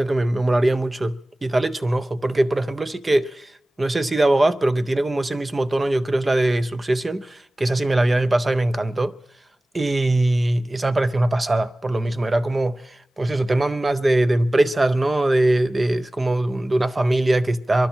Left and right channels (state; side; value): normal; both; correlation 0.98